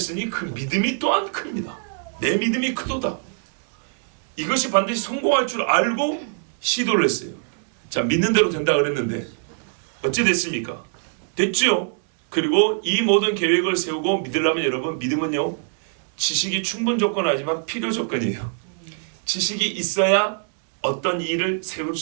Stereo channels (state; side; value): silent; left; digital silence